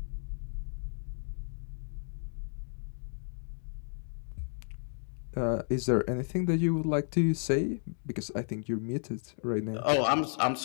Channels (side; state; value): right; silent; digital silence